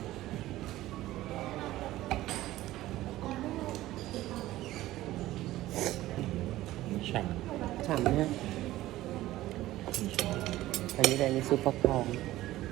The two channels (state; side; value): quieter; left; 15.8 dB